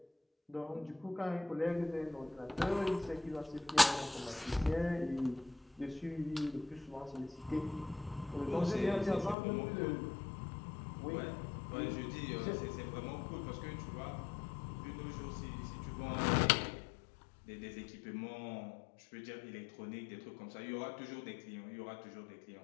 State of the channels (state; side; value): drops out; right; at 9.3 s